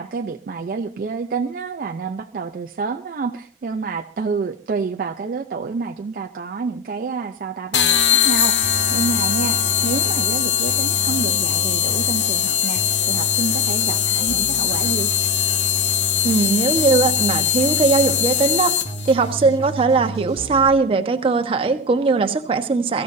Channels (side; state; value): both; normal; correlation 0.16